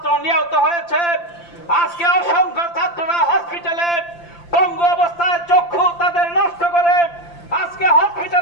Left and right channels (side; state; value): right; late; 5.8 ms